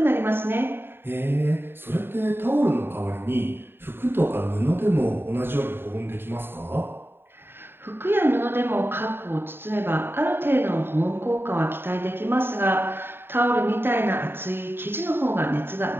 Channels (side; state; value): left; late; 0.11 ms